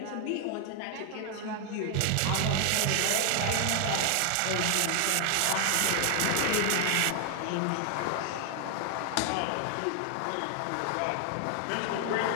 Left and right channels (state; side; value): different; both; correlation 0.00